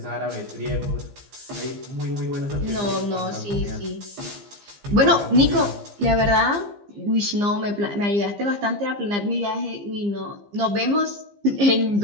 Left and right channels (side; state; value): left; late; 15 ms